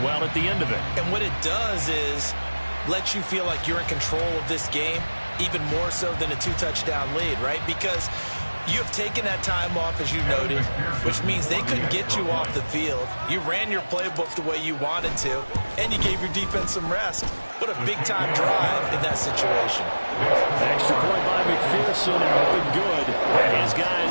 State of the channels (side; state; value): both; inverted; correlation -1.00